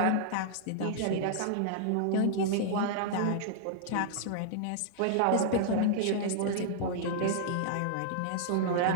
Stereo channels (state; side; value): different; both; correlation -0.01